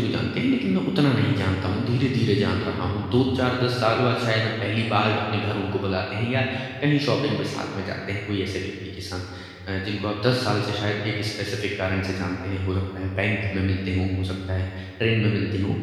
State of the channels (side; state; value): both; identical; correlation 1.00